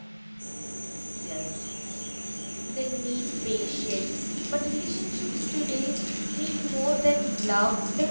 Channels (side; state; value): both; inverted; correlation -1.00